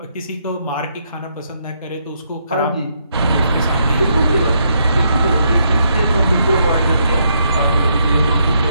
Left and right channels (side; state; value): both; inverted; correlation -0.75